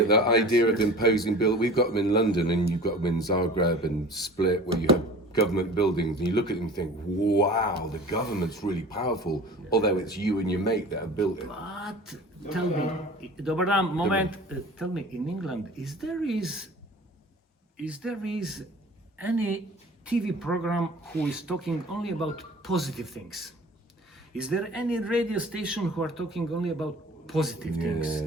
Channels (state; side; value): normal; both; correlation 0.42